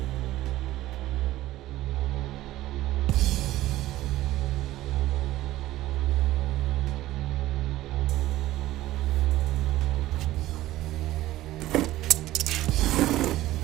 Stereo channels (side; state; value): left; quieter; 15.7 dB